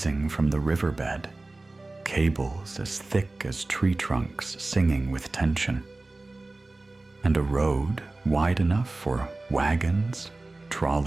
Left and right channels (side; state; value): left; quieter; 3.0 dB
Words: from the riverbed, cables as thick as tree trunks singing with tension, and a road wide enough for wagons,